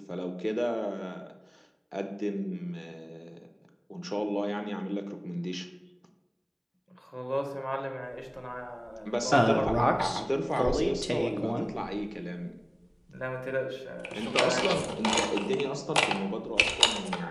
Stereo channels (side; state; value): both; identical; correlation 1.00